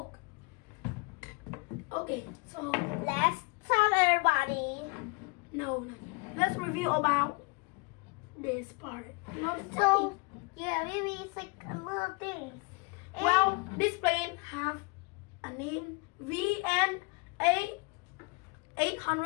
Okay, so Let's tell everybody. no. Let's review about this part. Not So yeah, maybe it's like a little things. And well, this plane have a name VNA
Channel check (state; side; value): quieter; right; 29.5 dB